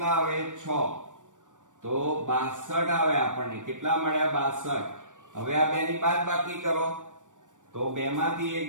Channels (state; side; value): late; left; 0.87 ms